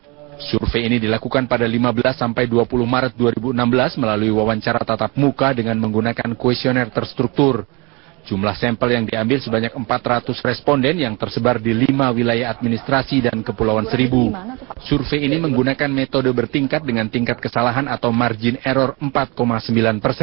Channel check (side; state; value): left; quieter; 27.2 dB